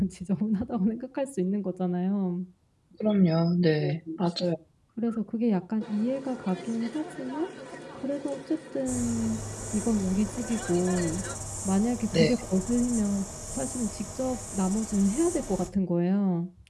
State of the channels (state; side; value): identical; both; correlation 1.00